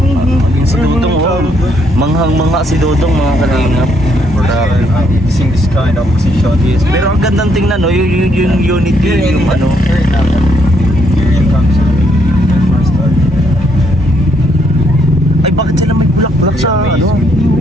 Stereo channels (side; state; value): both; normal; correlation 0.72